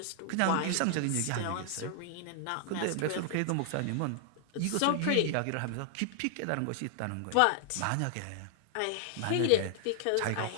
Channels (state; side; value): different; both; correlation 0.00